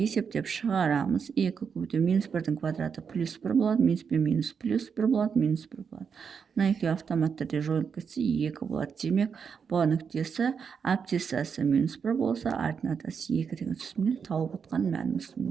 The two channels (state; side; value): quieter; left; 6.4 dB